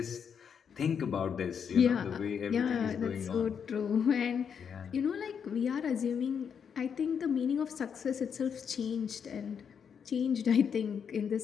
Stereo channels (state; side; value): quieter; right; 7.2 dB